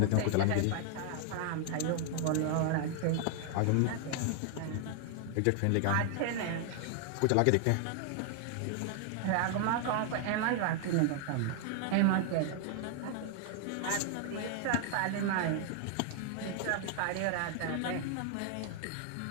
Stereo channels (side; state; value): both; different; correlation 0.00